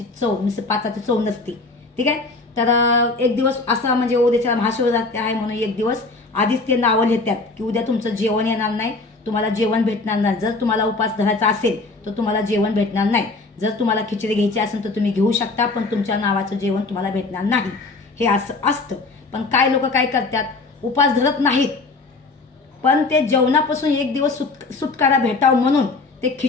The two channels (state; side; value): quieter; right; 3.6 dB